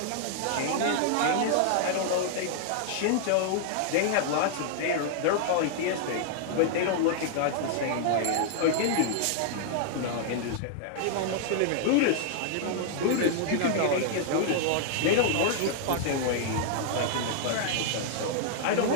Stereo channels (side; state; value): both; different; correlation -0.01